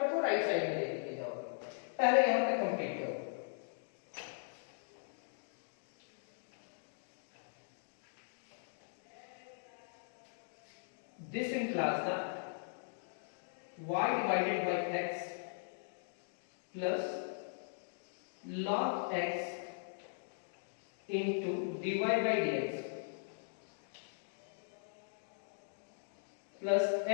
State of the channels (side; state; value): right; silent; digital silence